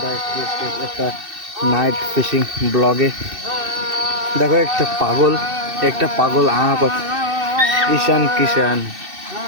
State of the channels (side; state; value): left; late; 2.6 ms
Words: একটা নাইট ফিশিং ব্লগে। দেখো একটা পাগল ঈশান কিষান